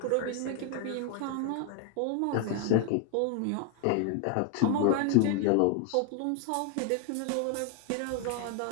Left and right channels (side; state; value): both; different; correlation 0.01